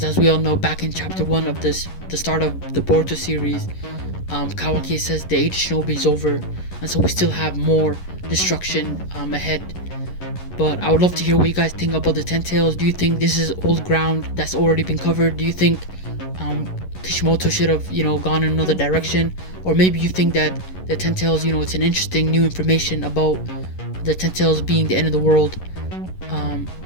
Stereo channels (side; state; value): right; late; 11 ms